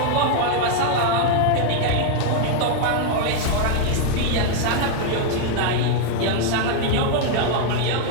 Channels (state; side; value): different; both; correlation 0.00